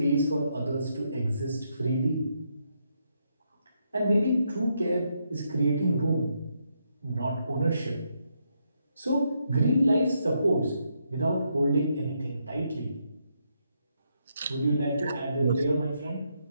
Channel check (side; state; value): both; inverted; correlation -0.78